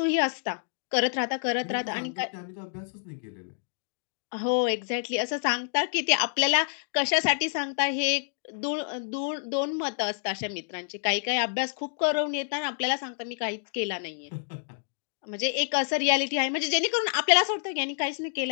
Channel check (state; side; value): silent; right; digital silence